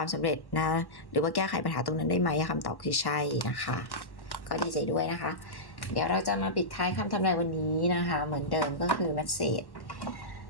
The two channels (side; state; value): right; late; 1.1 ms